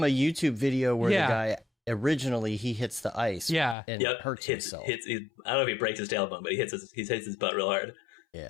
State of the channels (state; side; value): drops out; right; at 3.8 s